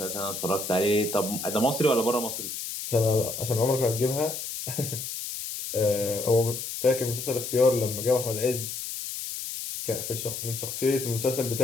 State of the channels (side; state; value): left; noise; hiss, 6 dB below the sound